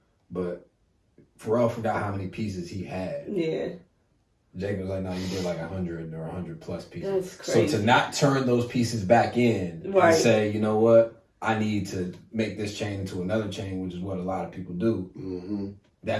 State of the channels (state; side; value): identical; both; correlation 1.00